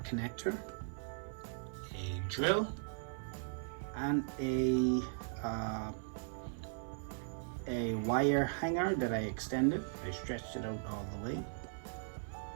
connector, a drill, and a wire hanger that I extended. I stretched it out all the way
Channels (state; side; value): silent; left; 52 dB below the other